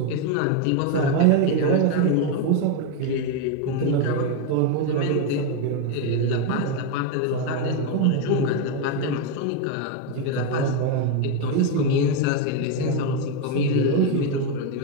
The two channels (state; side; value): different; both; correlation 0.02